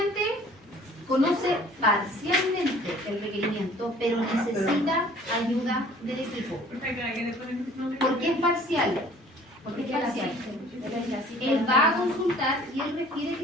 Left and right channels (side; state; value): both; normal; correlation 0.52